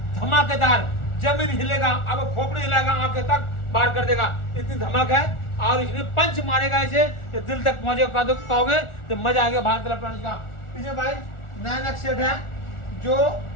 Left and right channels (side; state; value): right; late; 1.4 ms